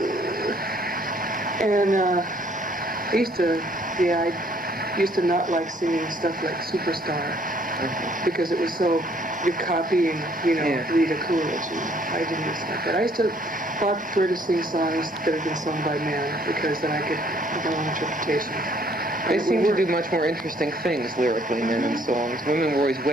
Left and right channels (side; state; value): both; normal; correlation 0.62